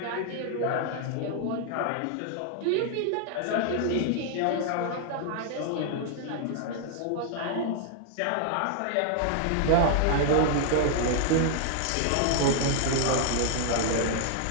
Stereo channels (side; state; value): both; different; correlation 0.00